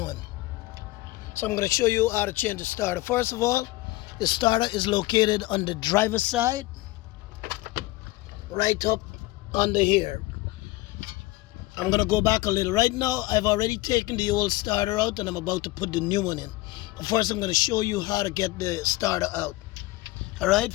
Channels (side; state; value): right; quieter; 19.2 dB